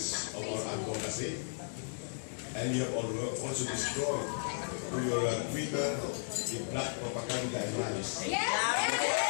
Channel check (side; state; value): right; silent; digital silence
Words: of our advocacy, and you have also destroyed through your Twitter the black propaganda and lies.